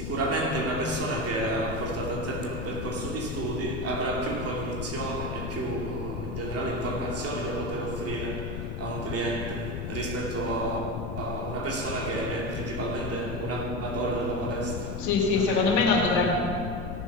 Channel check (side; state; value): left; noise; rumble, 4 dB below the sound